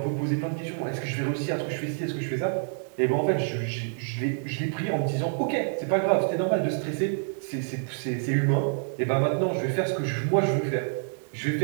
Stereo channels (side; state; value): left; silent; digital silence